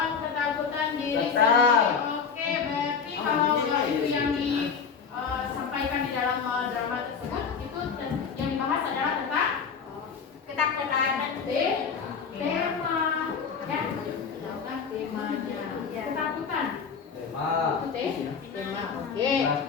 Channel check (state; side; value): quieter; right; 6.1 dB